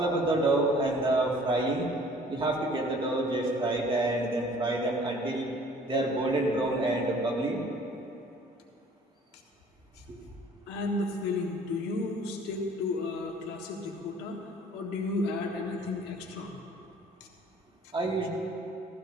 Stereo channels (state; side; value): normal; both; correlation 0.52